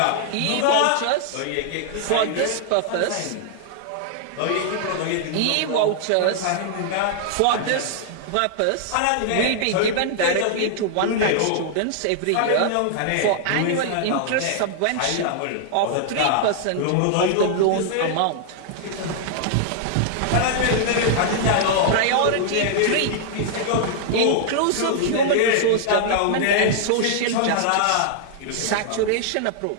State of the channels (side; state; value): both; different; correlation -0.01